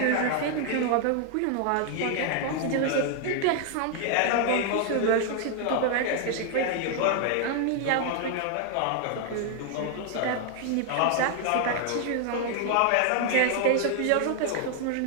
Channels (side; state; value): both; different; correlation 0.00